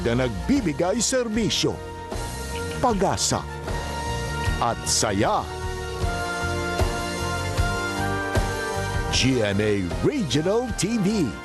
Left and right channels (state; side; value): identical; both; correlation 1.00